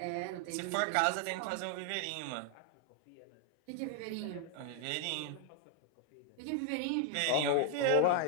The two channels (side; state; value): both; different; correlation -0.01